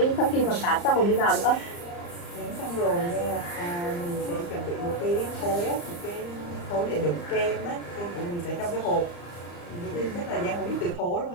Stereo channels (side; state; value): right; late; 34 ms